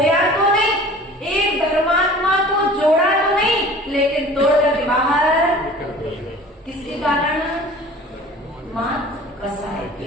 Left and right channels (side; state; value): both; normal; correlation 0.44